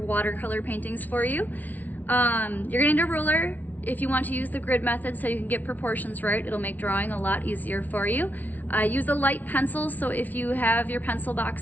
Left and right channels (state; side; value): late; right; 0.078 ms